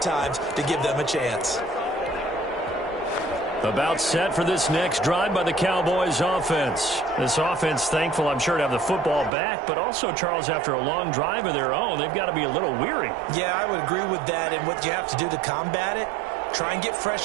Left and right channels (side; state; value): left; drops out; at 9.3 s